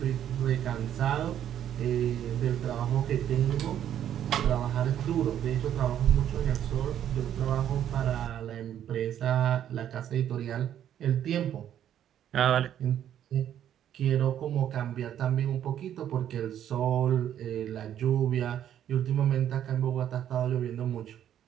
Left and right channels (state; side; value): quieter; left; 10.4 dB